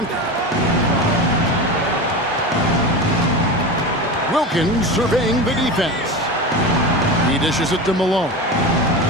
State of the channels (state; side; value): normal; both; correlation 0.26